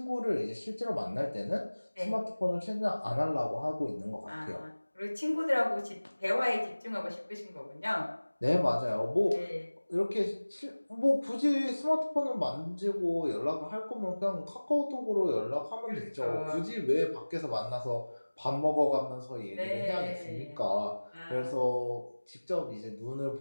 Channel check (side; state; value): both; inverted; correlation -1.00